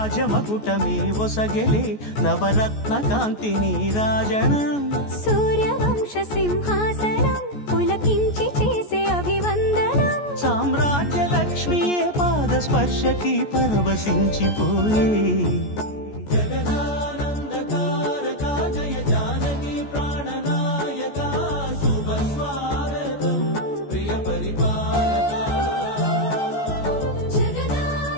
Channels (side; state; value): right; late; 14 ms